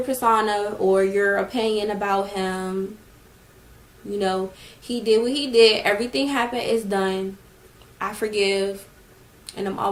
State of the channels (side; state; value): both; identical; correlation 1.00